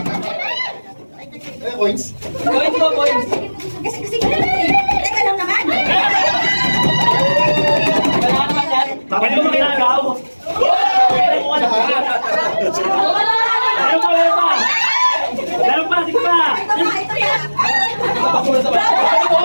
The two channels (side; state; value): both; inverted; correlation -1.00